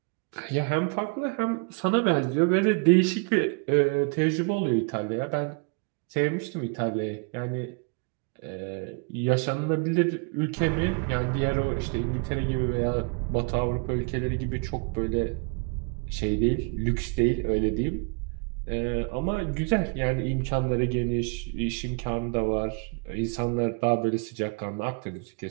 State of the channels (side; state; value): left; quieter; 35.7 dB